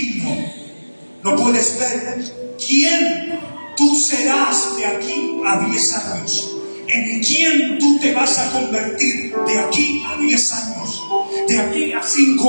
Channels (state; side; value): inverted; both; correlation -1.00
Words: No puedes ver quién tú serás de aquí a 10 años. En quién tú te vas a convertir de aquí a 10 años. De aquí a